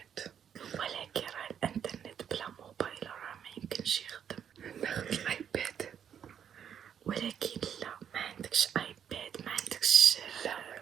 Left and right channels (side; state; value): left; quieter; 8.6 dB